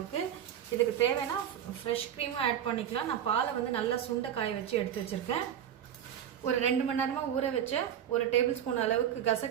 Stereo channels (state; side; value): quieter; left; 9.7 dB